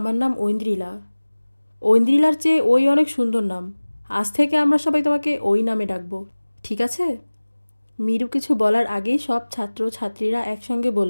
নাম ঐন্দ্রিলা। ঐন্দ্রিলার চেয়ে ওই অনেক সুন্দর নাম। আজ থেকে আমরা সবাই তোমাকে ওই নামে ডাকবো, ঠিক আছে? মীরু কিছু বলার আগেই সব ছাত্র ছাত্রীরা একসঙ্গে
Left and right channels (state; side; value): inverted; both; correlation -1.00